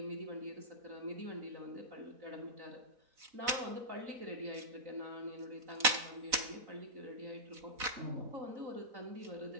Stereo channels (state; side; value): late; left; 4.0 ms